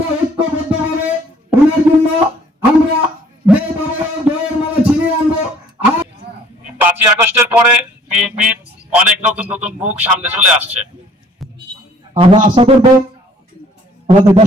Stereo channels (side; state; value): both; normal; correlation 0.57